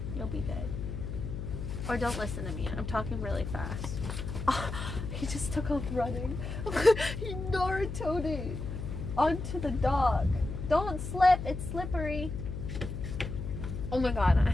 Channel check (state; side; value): noise; left; hum, 6 dB below the sound